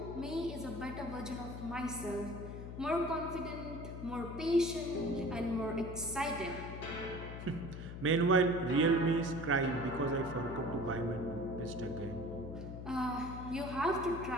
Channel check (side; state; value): left; noise; hum, 8 dB below the sound